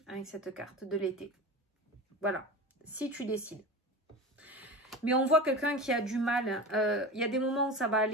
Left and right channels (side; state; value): both; normal; correlation 0.30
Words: avec cette carte de l'été. Voilà, si tu décides. Mais on voit quelqu'un qui a du mal. Il y a des moments où ça va